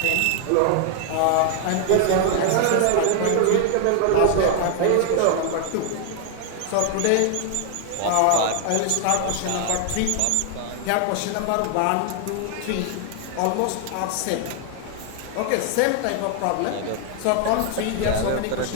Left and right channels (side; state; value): both; different; correlation 0.00